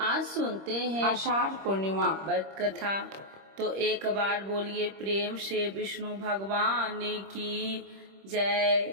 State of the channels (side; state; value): left; late; 26 ms